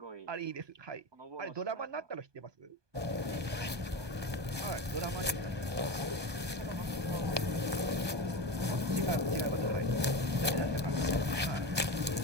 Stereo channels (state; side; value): late; left; 1.2 ms